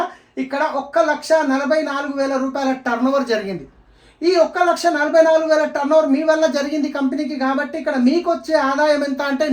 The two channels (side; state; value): both; identical; correlation 1.00